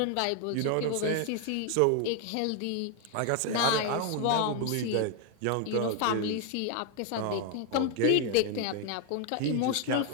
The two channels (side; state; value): both; different; correlation 0.00